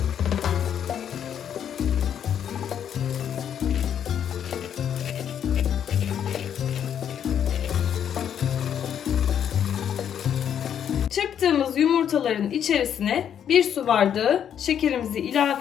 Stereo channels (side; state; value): right; quieter; 9.0 dB